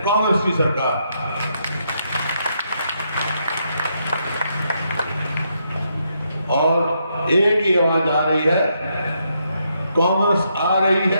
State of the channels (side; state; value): both; inverted; correlation -0.78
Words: कांग्रेस की सरकार। और एक ही आवाज आ रही है, कांग्रेस आ रही